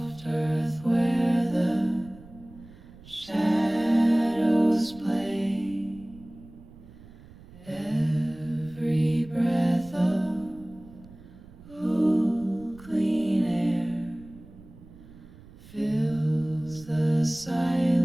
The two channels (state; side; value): noise; right; rumble, 21 dB below the sound